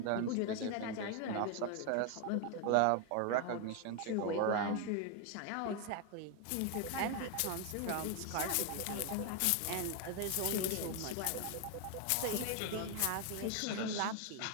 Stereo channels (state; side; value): different; both; correlation 0.01